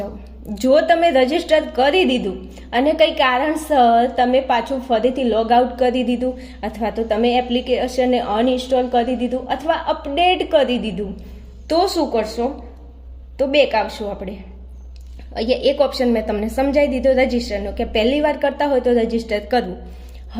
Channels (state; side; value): identical; both; correlation 1.00